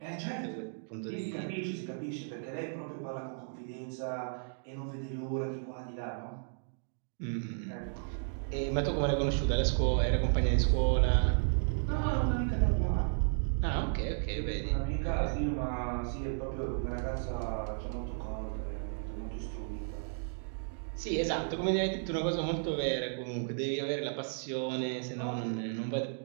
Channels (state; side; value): silent; left; digital silence